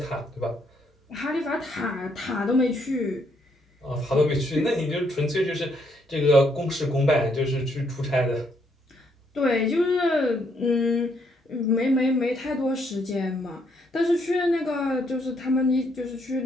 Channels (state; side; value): normal; both; correlation 0.72